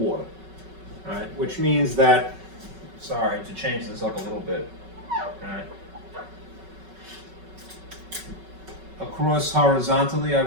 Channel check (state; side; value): late; left; 5.3 ms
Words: Alright, which means that, sorry, to change this up a little bit. Alright. Across horizontally, I